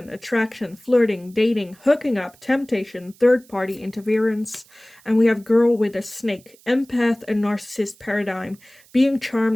attraction, flirting, dating, hooking up, temptation, third-party interference. And we have girl with a snake, empath, and narcissist paradigm, being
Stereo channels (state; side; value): noise; right; hiss, 28 dB below the sound